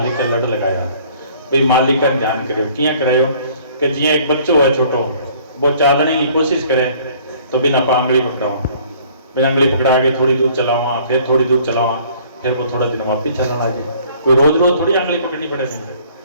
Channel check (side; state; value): both; inverted; correlation -0.56